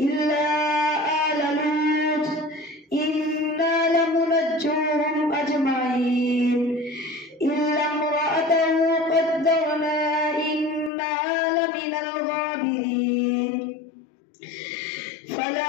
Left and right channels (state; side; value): drops out; right; at 10.9 s